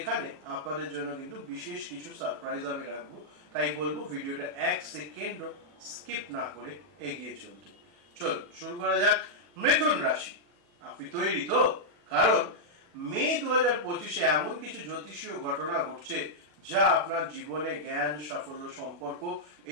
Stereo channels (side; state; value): left; late; 40 ms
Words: আপনাদের জন্য কিন্তু বিশেষ কিছু সারপ্রাইজ আমি রাখবো, তাই বলবো ভিডিওটা এক সেকেন্ডও স্কিপ না করে এগিয়ে চলতে। চলুন শুরু করা যাক। মিথুন রাশি, আপনি তৈরি তো? কারণ মে 2025-এ এমন কিছু জ্যোতিষীয় ঘটনা ঘটছে যা আপনার জীবনে জ্ঞান, সাফল্য, সম্পর্ক